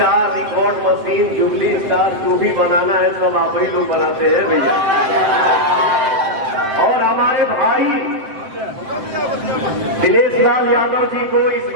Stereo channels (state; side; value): late; left; 7.7 ms